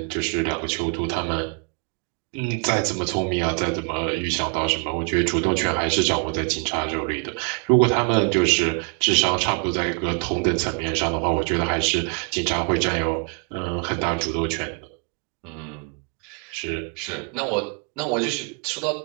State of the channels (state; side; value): quieter; left; 38.0 dB